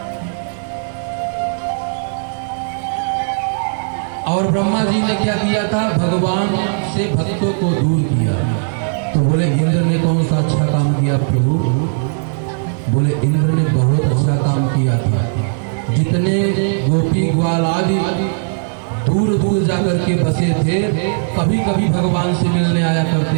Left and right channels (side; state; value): left; silent; digital silence